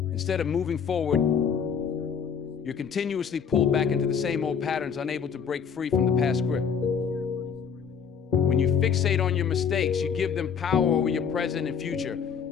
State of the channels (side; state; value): right; quieter; 6.9 dB